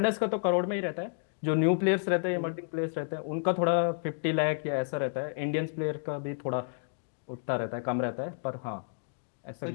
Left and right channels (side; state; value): right; silent; digital silence